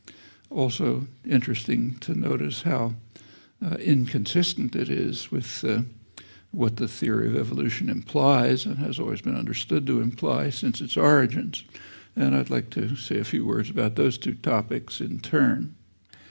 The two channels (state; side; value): inverted; both; correlation -1.00